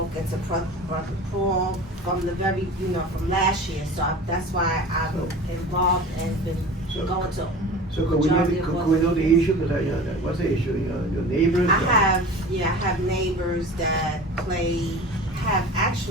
to Brother Paul from the very, from last year, so that's why I'm involved and been going to. So could we know the issue, cause what's the issue, your neighbors? I have neighbors that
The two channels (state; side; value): normal; both; correlation 0.37